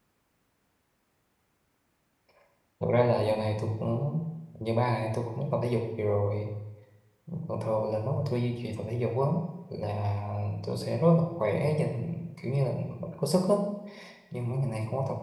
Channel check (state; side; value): identical; both; correlation 1.00